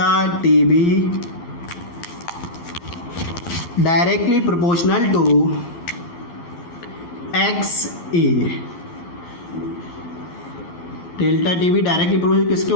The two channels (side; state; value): right; late; 11 ms